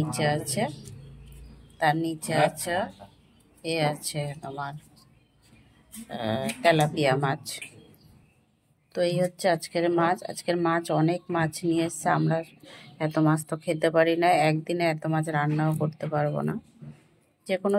আছে আছে তোমার তেলাপিয়া মাছ। তো এই হচ্ছে আজকের মাছ অনেক মাছ নিয়ে এসছে। আমরা এত মাছ তো খেতে পারি না, একদিনে এত মাছ রান্নাও করতে পারবো না। যে কোনো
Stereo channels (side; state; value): both; identical; correlation 1.00